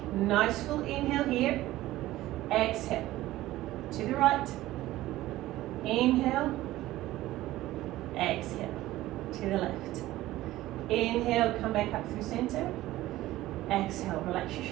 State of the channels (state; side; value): quieter; left; 16.1 dB